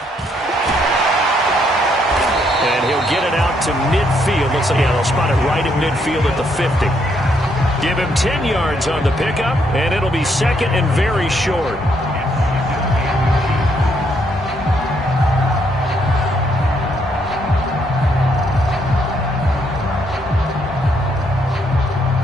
And he'll get it out to midfield. Looks like they'll spot it right at midfield at the 50. Give him 10 yards on the pickup, and it'll be 2nd and very short.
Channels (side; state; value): both; normal; correlation 0.73